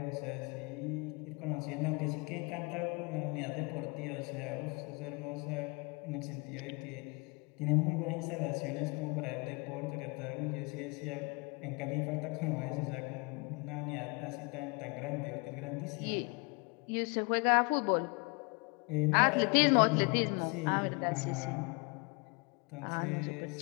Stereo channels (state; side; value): quieter; right; 30.2 dB